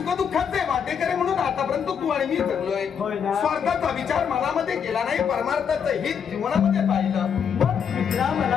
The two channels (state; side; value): quieter; right; 7.4 dB